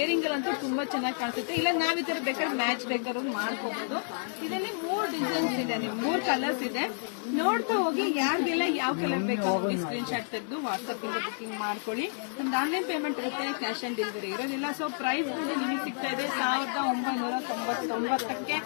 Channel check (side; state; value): right; silent; 58 dB below the other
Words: ಅಂತೂ ತುಂಬಾ ಚೆನ್ನಾಗಿ ಕಾಣಿಸುತ್ತೆ. ಇಲ್ಲ ನಾವ್ ಈ ತರ ಬೇಕಾದ್ರೆ ಮ್ಯಾಚ್ ಬೇಕಾದ್ರೂ ಮಾಡ್ಕೋಬಹುದು. ಇದರಲ್ಲಿ 3 ಡಿಸೈನ್ಸ್ ಇದೆ, 3 ಕಲರ್ಸ್ ಇದೆ. ನೋಡ್ತಾ ಹೋಗಿ ಯಾರಿಗೆಲ್ಲ ಯಾವ ಕಲರ್ ಬೇಕು ಸ್ಕ್ರೀನ್ ಶಾಟ್ ತೆಗೆದು ವಾಟ್ಸ್ಆಪ್ ಇಂದ ಬುಕಿಂಗ್ ಮಾಡ್ಕೊಳ್ಳಿ. ನಮ್ದು ಆನ್ಲೈನ್ ಪೇಮೆಂಟ್ ಇರುತ್ತೆ, ಕ್ಯಾಶ್ ಆನ್ ಡೆಲಿವರಿ ಇರೋದಿಲ್ಲ. ಸೊ ಪ್ರೈಸ್ ಬಗ್ಗೆ ನಿಮಗೆ ಸಿಗ್ತಾ ಇದೆ 1999ಕ್ಕೆ.